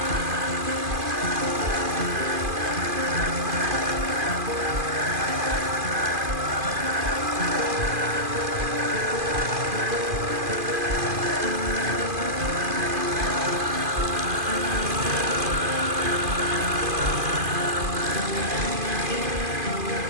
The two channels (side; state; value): left; late; 2.5 ms